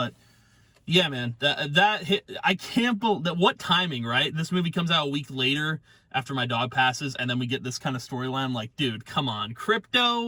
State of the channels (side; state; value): both; identical; correlation 1.00